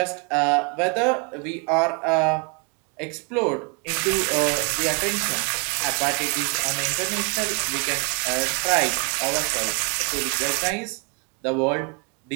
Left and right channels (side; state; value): left; quieter; 35.3 dB